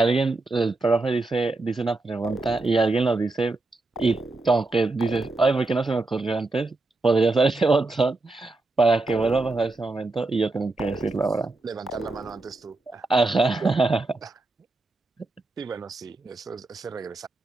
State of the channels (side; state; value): left; quieter; 3.2 dB